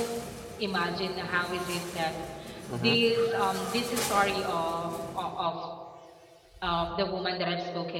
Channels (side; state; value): both; identical; correlation 1.00